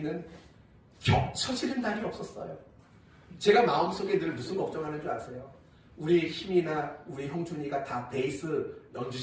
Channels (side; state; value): both; identical; correlation 1.00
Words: 겹쳐지는 날이 없었어요. 제가 마음속에 늘 무슨 걱정하는 줄 아세요? 우리 힘이나 우리 형준이가 다 베이스